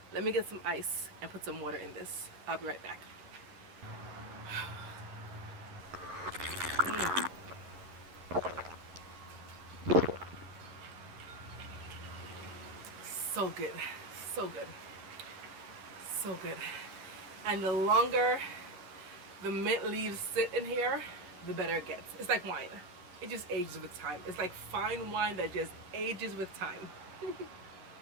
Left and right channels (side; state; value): left; late; 11 ms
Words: Let me get some ice and put some water in this. I'll be right back. So good, so good, so good. And the longer the mint leaves sit in here, the better it gets. It's like wine. It just ages with time. It's like fine wine that just ages with time.